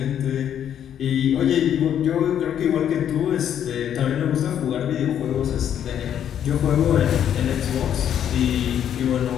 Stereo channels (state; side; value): quieter; right; 9.6 dB